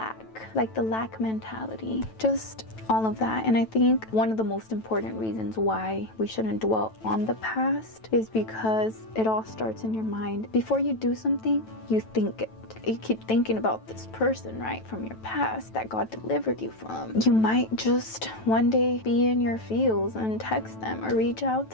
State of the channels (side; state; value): right; late; 9.1 ms